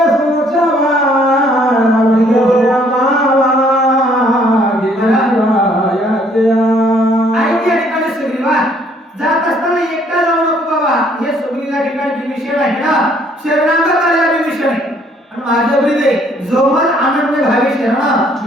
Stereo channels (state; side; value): normal; both; correlation 0.63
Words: सुरक्षा माझ्या ब्रिदे जोमल आनंद भावी